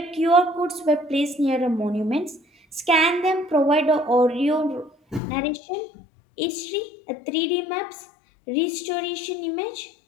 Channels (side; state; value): right; drops out; at 5.2 s